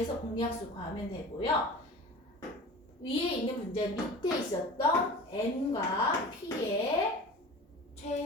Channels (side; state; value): both; normal; correlation 0.37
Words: 공약수 구하면 되고요. 위에 있는 문제 밑에 있었던 n과 p의